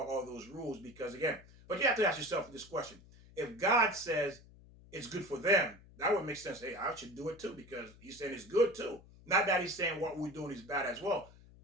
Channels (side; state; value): left; noise; hum, 22 dB below the sound